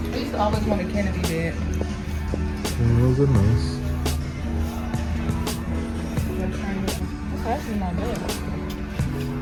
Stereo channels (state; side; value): identical; both; correlation 1.00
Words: I used to always want a Kennedy bed. Those are nice. That's actually not bad.